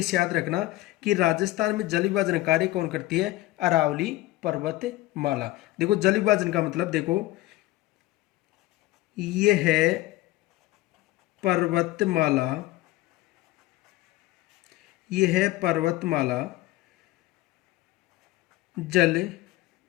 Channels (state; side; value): quieter; right; 17.3 dB